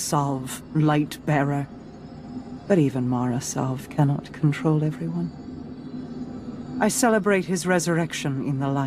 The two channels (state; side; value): identical; both; correlation 1.00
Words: Light-Bearer. But even Marasav cannot control everyone. I celebrate his resurrection in the